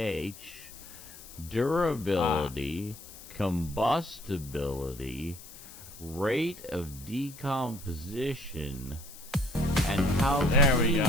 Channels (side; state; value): left; noise; hiss, 17 dB below the sound